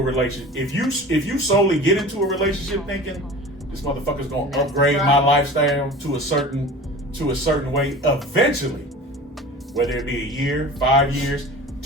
relationship, if you solely get into a relationship thinking this motherfucker's going to upgrade my lifestyle to a certain way eventually, whether it be a year, 5 years,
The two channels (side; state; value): both; normal; correlation 0.38